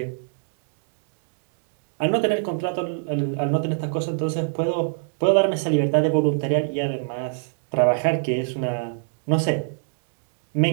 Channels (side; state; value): left; silent; digital silence